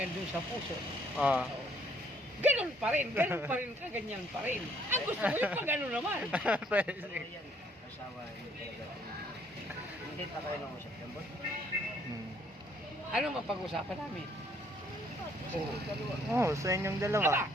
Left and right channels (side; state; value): both; normal; correlation 0.65